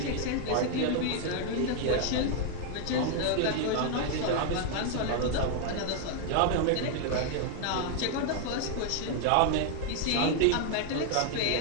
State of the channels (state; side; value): different; both; correlation 0.00